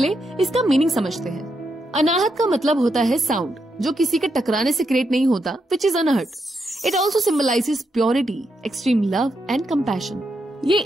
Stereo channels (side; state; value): both; normal; correlation 0.82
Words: इसका मीनिंग समझते हैं। अनाहत का मतलब होता है साउंड, जो किसी के टकराने से क्रिएट नहीं होता, which is unhurt. It also symbolizes purity, extreme love and compassion. ये